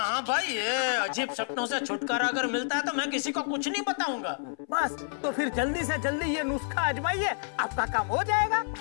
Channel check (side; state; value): right; silent; 59 dB below the other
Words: हाँ भाई, ये अजीब सपनों से छुटकारा अगर मिलता है तो मैं किसी को कुछ नहीं बताऊंगा। बस तो फिर जल्दी से जल्दी ये नुस्खा आजमाइए, आपका काम हो जाएगा।